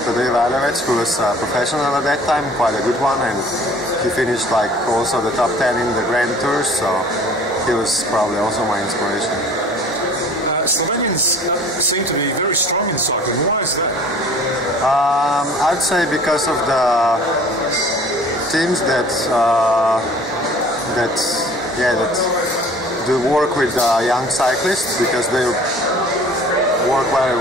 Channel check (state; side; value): normal; both; correlation 0.49